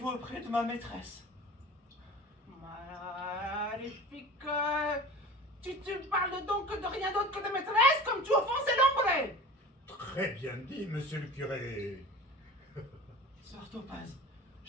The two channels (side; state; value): both; normal; correlation 0.37